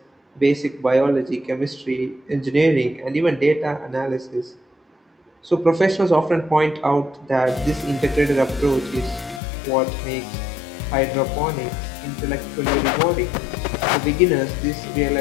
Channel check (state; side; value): drops out; right; at 9.4 s